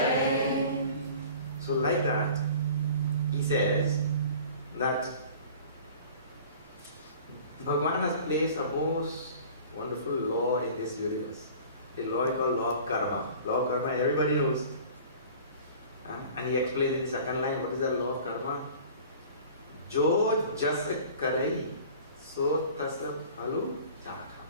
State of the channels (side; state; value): both; inverted; correlation -0.44